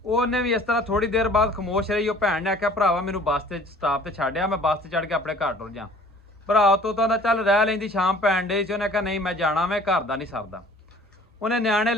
ਉਹਨੇ ਵੀ ਇਸ ਤਰ੍ਹਾਂ ਥੋੜੀ ਦੇਰ ਬਾਅਦ ਖਾਮੋਸ਼ ਰਹੀ। ਉਹ ਭੈਣ ਨੇ ਆਖਿਆ ਭਰਾਵਾ ਮੈਨੂੰ ਬੱਸ ਤੇ ਸਟਾਪ ਤੇ ਛੱਡਿਆ, ਮੈਂ ਬੱਸ ਤੇ ਚੜ੍ਹ ਕੇ ਆਪਣੇ ਘਰ ਟੁਰ ਜਾ। ਭਰਾ ਤੋਂ ਤਾਂ ਚੱਲ ਰਹਿ ਲੈਂਦੀ, ਸ਼ਾਮ ਪੈਣ ਡਈ ਸੀ। ਉਹਨੇ ਕਿਹਾ ਨਹੀਂ ਮੈਂ ਜਾਣਾ, ਮੈਂ ਘਰ ਦਾ ਨਹੀਂ ਸਰਦਾ। ਉਹਨੇ ਨਿਆਣੇ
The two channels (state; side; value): normal; both; correlation 0.51